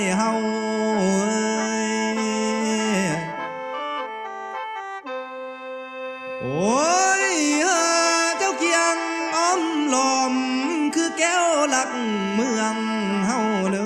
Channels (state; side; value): identical; both; correlation 1.00